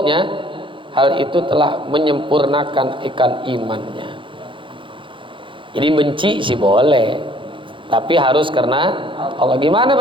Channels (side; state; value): left; late; 0.24 ms